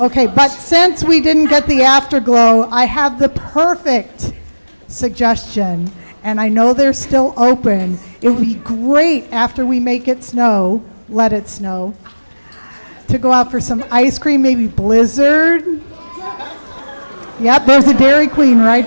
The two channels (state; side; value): inverted; both; correlation -1.00